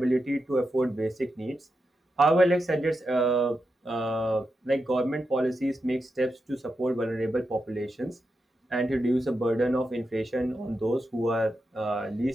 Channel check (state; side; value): normal; both; correlation 0.88